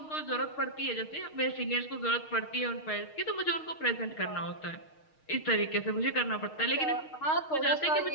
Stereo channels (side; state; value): right; late; 6.4 ms